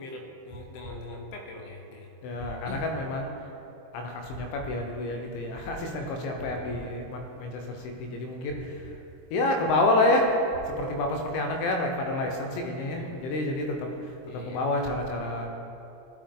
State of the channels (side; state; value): right; late; 23 ms